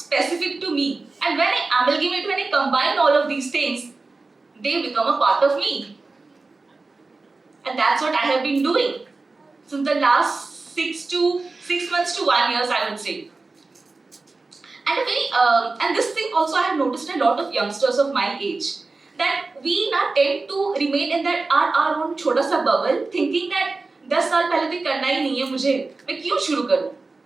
to me. And when I amalgamate, when I combine all of these things, they become a part of me. And that's what I have been doing since the last 6 months to 1 year, I would say. And and this thing also I have noticed a lot of youngsters of my age, that we now tend to remain in that our own छोटा सा bubble, thinking that 10 साल पहले तो करना ही नहीं है मुझे, मैं क्यों शुरू करूँ?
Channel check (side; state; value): left; quieter; 3.7 dB